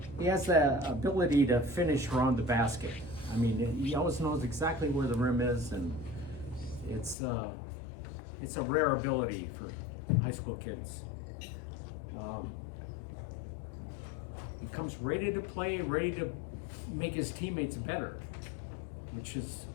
He has the ability to finish around the basket. I mean, he always knows exactly where the rim is, and it's a rare ability for high school kids. He comes ready to play, ready to make his teammates better, which is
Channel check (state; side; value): drops out; right; at 7.2 s